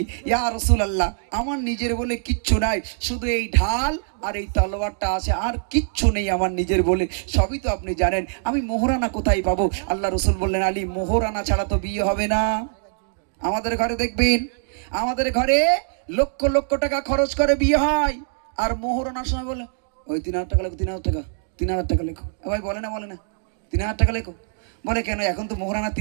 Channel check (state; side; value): silent; left; digital silence